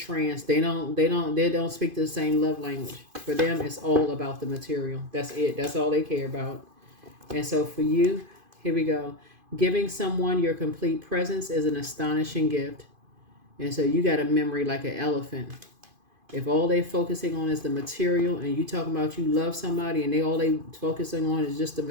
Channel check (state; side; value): late; left; 2.5 ms